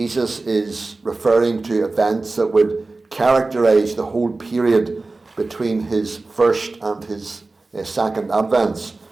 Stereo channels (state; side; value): quieter; left; 3.4 dB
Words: is referring to events that would characterize the whole period between his first and his second advents.